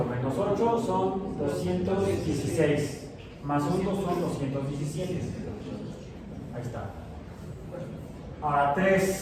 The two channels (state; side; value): identical; both; correlation 1.00